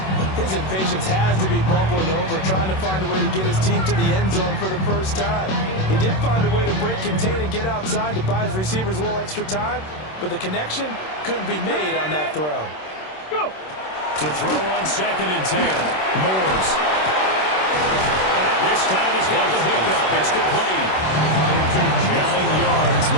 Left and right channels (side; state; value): right; late; 26 ms